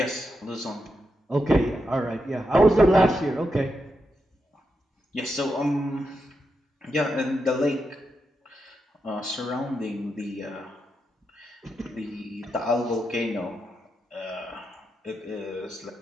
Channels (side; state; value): both; normal; correlation 0.85